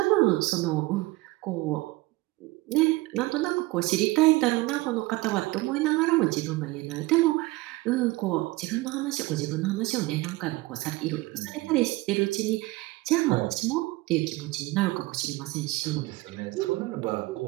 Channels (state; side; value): quieter; left; 20.6 dB